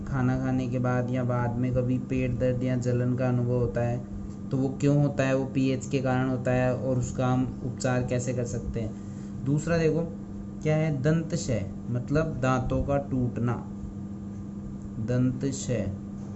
खाना खाने के बाद या बाद में कभी पेट दर्द या जलन का अनुभव होता है, तो वो क्यों होता है? वो पीएच के कारण होता है, और उसका हम उपचार कैसे कर सकते हैं। दूसरा देखो क्या है, दंतशय मतलब दांतों का टूटना, दंतशय।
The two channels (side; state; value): both; identical; correlation 1.00